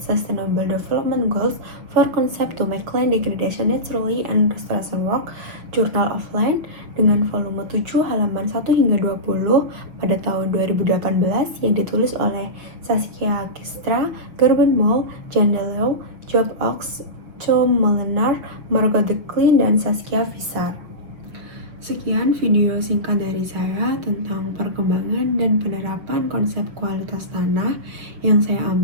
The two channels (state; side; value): late; left; 6.2 ms